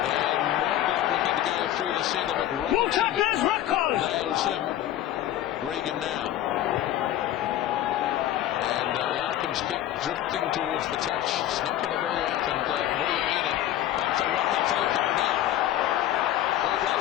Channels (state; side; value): quieter; right; 12.7 dB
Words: Mortlock looking to go through the centre, but Robinson nails him. Regan now. And Larkham's kick drifting towards the touch. It's not going to go out. And Muriaina up to Rakafoko now. All